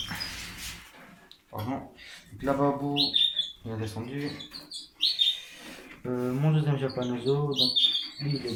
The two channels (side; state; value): both; identical; correlation 1.00